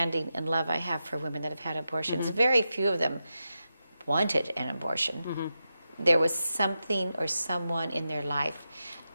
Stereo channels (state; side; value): inverted; both; correlation -0.89